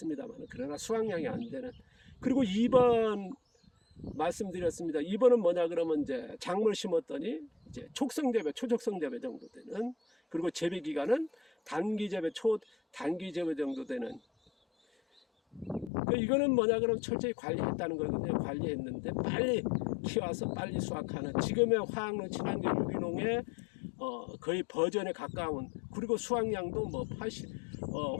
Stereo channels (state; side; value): drops out; right; at 15.9 s